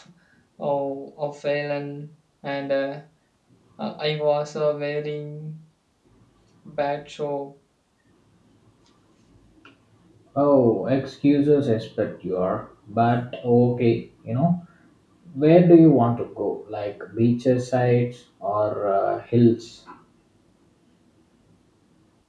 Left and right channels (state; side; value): identical; both; correlation 1.00